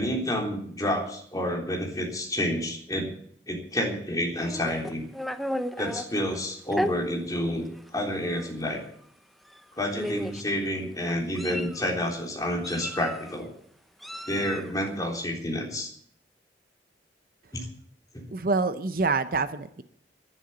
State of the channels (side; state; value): both; normal; correlation 0.42